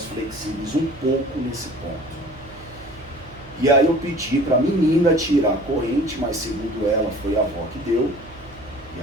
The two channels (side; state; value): right; noise; hum, 21 dB below the sound